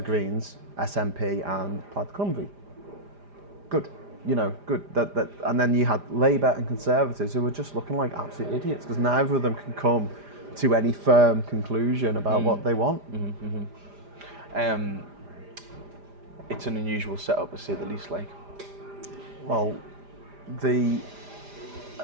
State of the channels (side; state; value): left; late; 5.0 ms